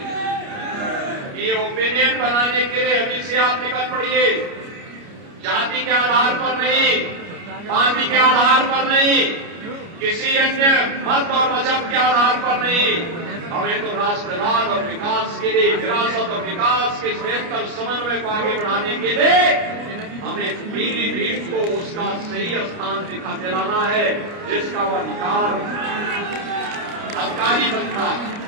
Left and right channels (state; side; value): late; left; 29 ms